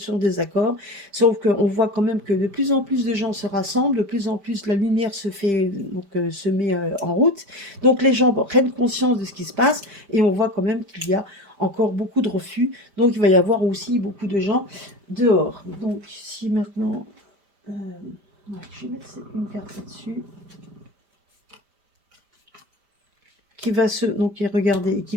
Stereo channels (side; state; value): left; late; 5.0 ms